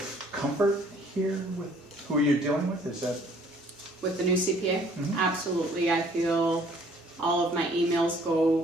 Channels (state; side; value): normal; both; correlation 0.58